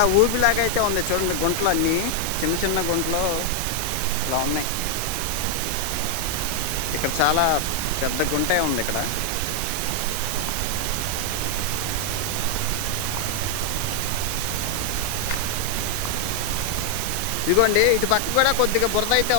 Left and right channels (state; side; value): different; both; correlation 0.00